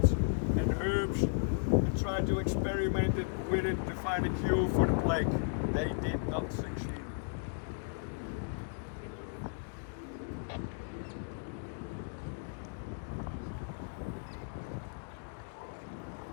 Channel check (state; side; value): silent; right; digital silence